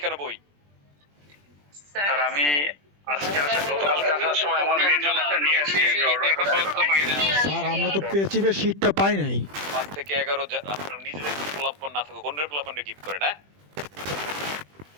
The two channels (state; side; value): late; left; 20 ms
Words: কেন বই? স্যার আমি আজকে গতকালকে আসার সময় আমার মেয়ের জন্য একটা নিয়ে আসি, আমি অর্ডার করতে পারি না। স্যার আমরা তো পেচিবের শীটটা পাই নাই। 5 থেকে 11 আপনার নিজেদের পোলাপান না থাকুক, অন্যের পোলাপানকে গিফট করেন, হ্যাঁ?